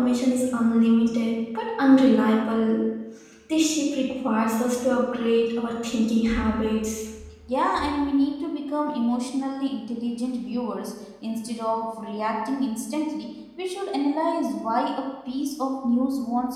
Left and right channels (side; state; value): both; identical; correlation 1.00